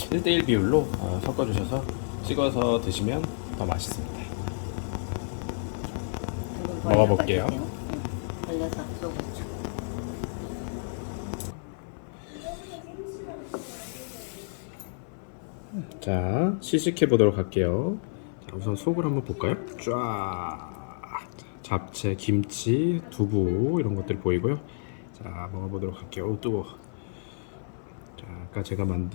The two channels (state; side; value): silent; right; 58 dB below the other